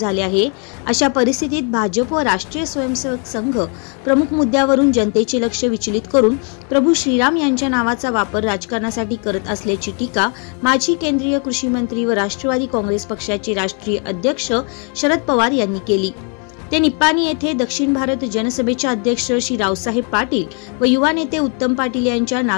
आहे। अशा परिस्थितीत भाजप व राष्ट्रीय स्वयंसेवक संघ प्रमुख मुद्द्यावरून जनतेचे लक्ष विचलित करून प्रभू श्रीराम यांच्या नावाचा वापर राजकारणासाठी करत असल्याची टीका माजी केंद्रीय कृषी मंत्री व राष्ट्रवादी काँग्रेस पक्षाचे राष्ट्रीय अध्यक्ष शरद पवार यांनी केली। ते निप्पाणी येथे दक्षिण भारत जनसभेचे अध्यक्ष श्री रावसाहेब पाटील व युवा नेते उत्तम पाटील यांच्या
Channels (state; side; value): quieter; right; 38.9 dB